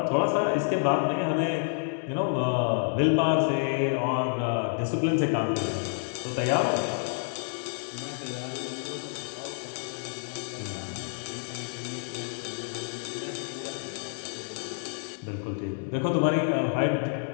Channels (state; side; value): silent; right; digital silence